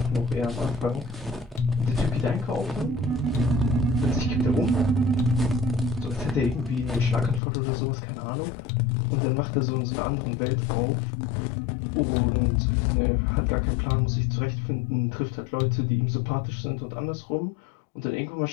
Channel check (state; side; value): drops out; right; at 7.4 s